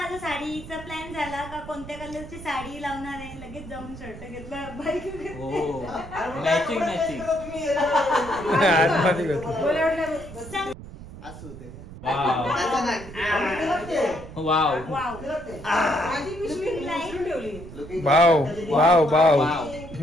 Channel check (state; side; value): noise; right; rumble, 14 dB below the sound